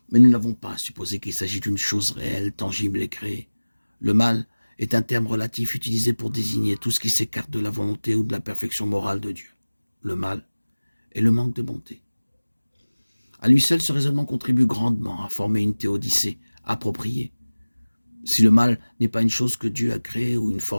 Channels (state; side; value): inverted; both; correlation -1.00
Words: Mais nous n'avons pas à supposer qu'il s'agit d'une chose réelle, tangible et créée. Le mal est un terme relatif utilisé pour désigner tout ce qui s'écarte de la volonté ou de la perfection morale de Dieu. Le mal est le manque de bonté. À lui seul, ce raisonnement contribue grandement à former une théodicée appropriée. Si le mal n'est pas une chose que Dieu a créée ou une